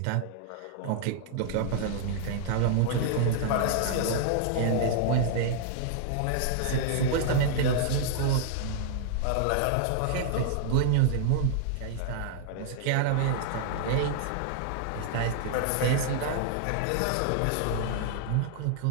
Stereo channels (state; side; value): different; both; correlation -0.01